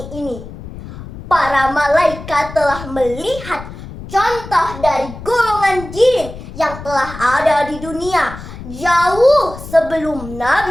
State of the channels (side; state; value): left; noise; rumble, 13 dB below the sound